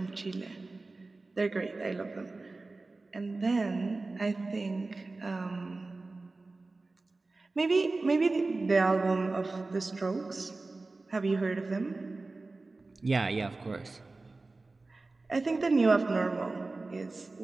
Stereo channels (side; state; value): left; quieter; 3.4 dB